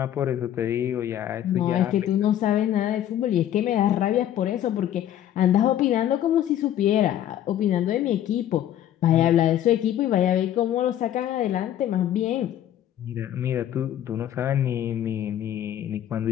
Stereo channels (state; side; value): quieter; right; 11.4 dB